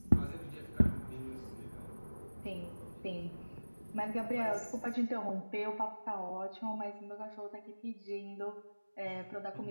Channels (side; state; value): both; inverted; correlation -1.00